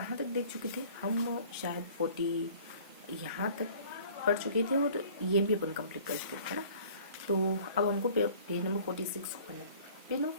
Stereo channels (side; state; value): both; inverted; correlation -0.51